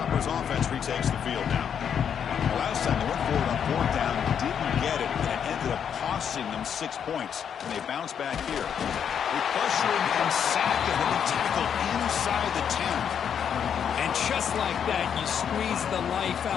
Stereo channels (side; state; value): right; quieter; 8.0 dB